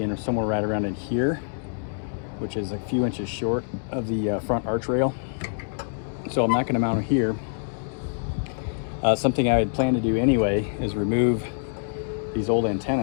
somewhere right around in here, which is a few inches short of the front arch rail. So I'm not going to mount it here. Something I had planned to do anyway is remove these old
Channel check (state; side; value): silent; right; digital silence